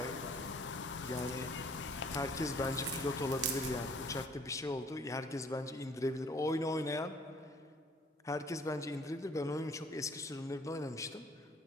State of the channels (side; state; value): both; normal; correlation 0.57